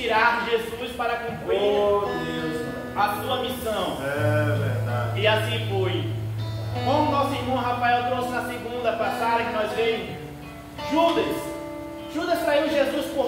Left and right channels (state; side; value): identical; both; correlation 1.00